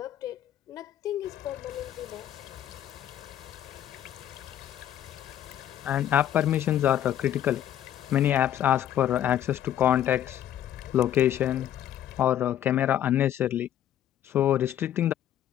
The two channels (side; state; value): right; quieter; 11.1 dB